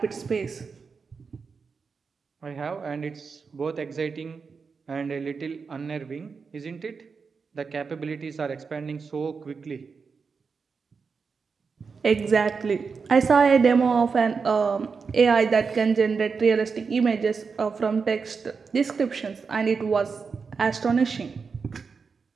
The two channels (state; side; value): quieter; left; 5.2 dB